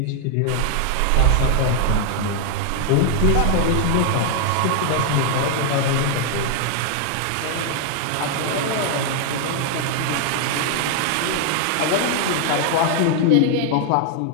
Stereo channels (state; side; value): different; both; correlation 0.00